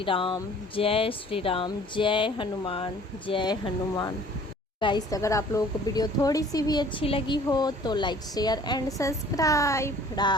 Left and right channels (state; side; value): normal; both; correlation 0.52